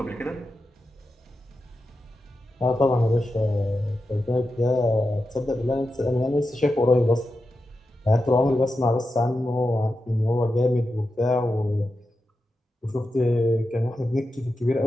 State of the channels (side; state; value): both; normal; correlation 0.90